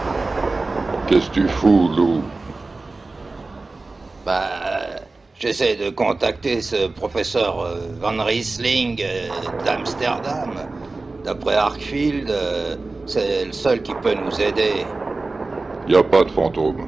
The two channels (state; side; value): quieter; left; 3.5 dB